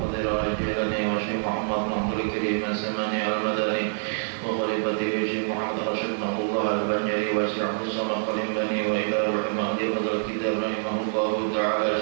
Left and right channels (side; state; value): left; silent; 61 dB below the other